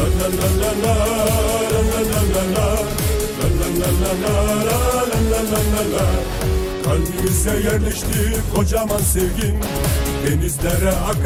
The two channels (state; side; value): identical; both; correlation 1.00